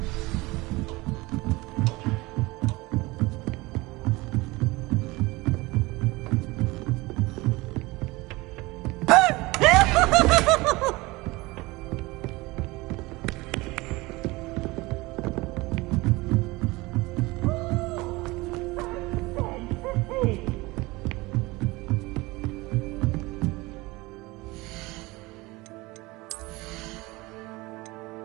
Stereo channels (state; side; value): quieter; left; 22.0 dB